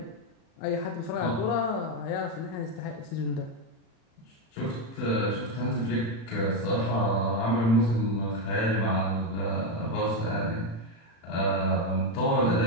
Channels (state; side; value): late; right; 35 ms